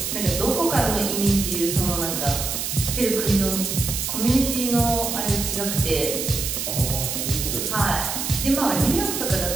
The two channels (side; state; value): right; noise; hiss, 3 dB below the sound